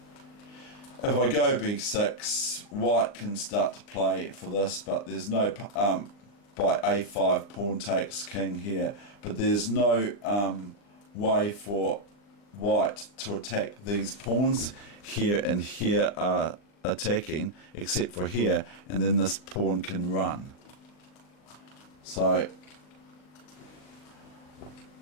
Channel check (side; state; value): right; late; 40 ms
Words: If I go b6, white can start to play for this, but there's no by a5 pawn takes king here, but there's no way for white to attack these pawns. Here and here are attacking, except for here, and then this pawn can run. So